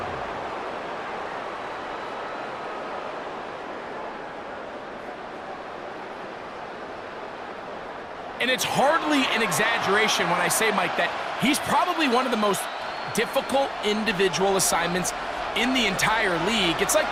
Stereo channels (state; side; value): identical; both; correlation 1.00